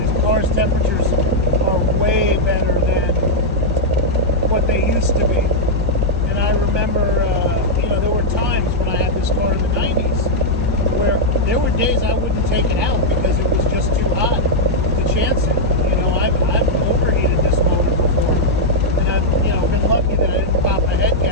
car's temperatures are way better than what they used to be. And I remember, there were times when I had this car in the 90s where there were days I wouldn't take it out because it was just too hot to chance it. I've overheated this motor before, and I've been lucky that I didn't pop a head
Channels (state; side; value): normal; both; correlation -0.04